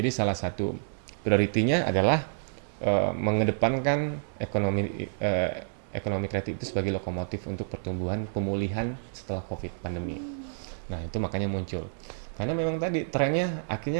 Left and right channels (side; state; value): left; silent; digital silence